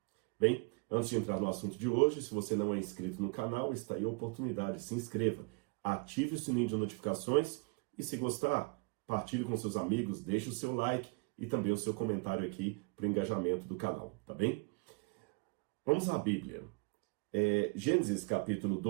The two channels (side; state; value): left; quieter; 30.5 dB